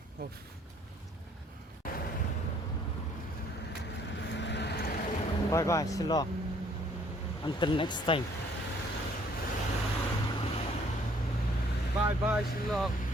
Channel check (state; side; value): normal; both; correlation 0.61